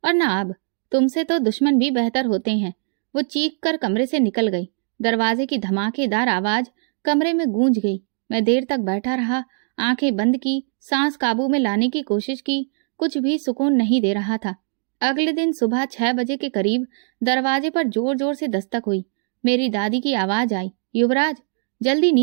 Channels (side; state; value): left; silent; 65 dB below the other